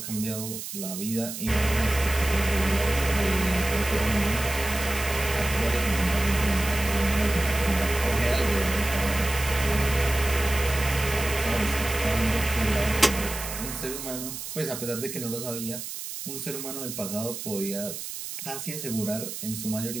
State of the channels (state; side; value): noise; right; hiss, 8 dB below the sound